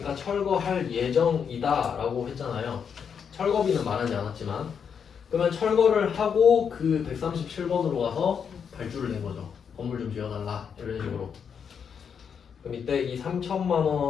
철거할 예정이다 라고 했잖아요. 철거비는 말하지 않았지만 그러면 철거를 하고 그 137번으로 가서 발주를 낸 거죠. 건물 좀 지어달라 이런 식으로. 그럼 이때 이 3천만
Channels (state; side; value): quieter; right; 7.0 dB